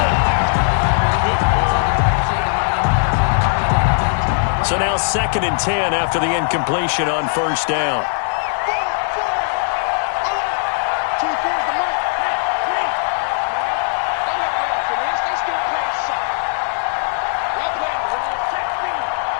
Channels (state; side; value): silent; right; digital silence